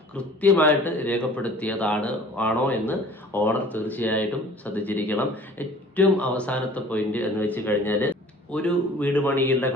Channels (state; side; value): normal; both; correlation 0.48